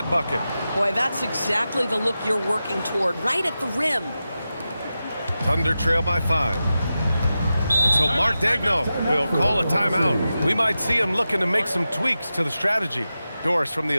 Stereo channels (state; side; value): inverted; both; correlation -0.92